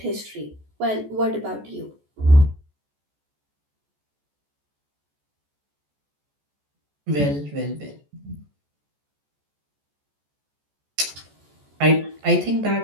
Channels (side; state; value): left; late; 14 ms